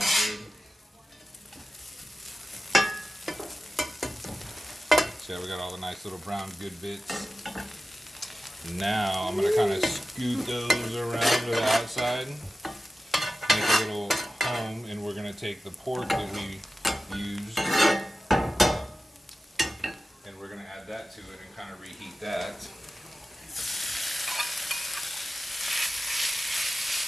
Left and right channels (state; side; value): normal; both; correlation 0.94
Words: good. So yeah, we got all the nice little brown good bits. Now I'm going to kind of scoot those around to the outside, make a little home, and we're going to take the pork that we used and we're going to add that to it and kind of reheat that.